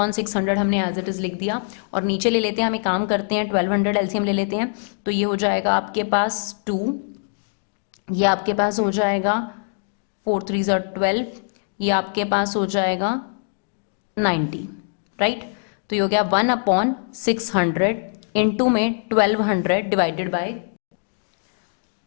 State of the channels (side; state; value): right; silent; digital silence